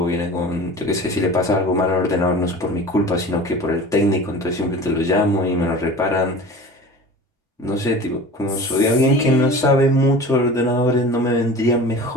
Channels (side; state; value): both; normal; correlation 0.37